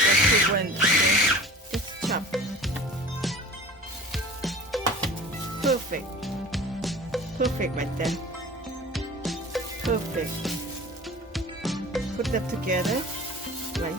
too blend, okay? Just chop. Perfect. Perfect right there. Perfect. Put them together right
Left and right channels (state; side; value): normal; both; correlation 0.40